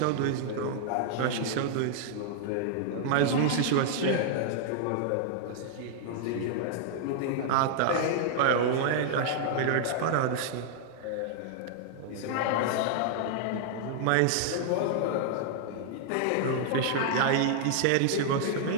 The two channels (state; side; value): different; both; correlation -0.01